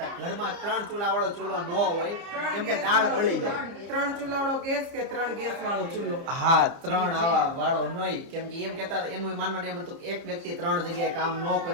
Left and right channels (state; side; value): late; left; 30 ms